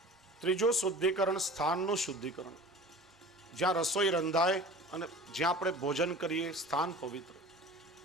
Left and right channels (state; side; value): normal; both; correlation 0.40